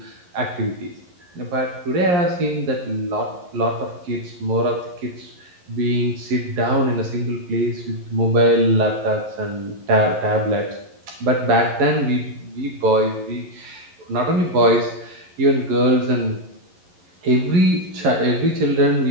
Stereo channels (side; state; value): left; late; 11 ms